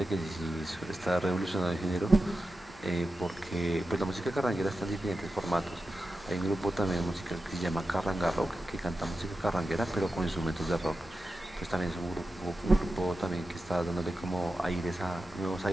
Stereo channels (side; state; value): left; noise; hum, 23 dB below the sound